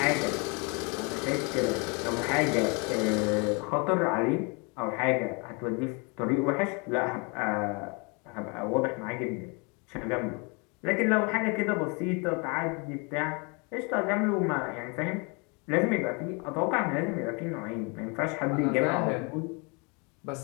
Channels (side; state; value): right; quieter; 31.8 dB